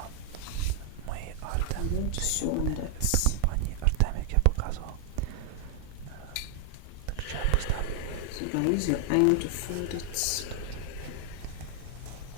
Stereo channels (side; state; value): both; different; correlation 0.00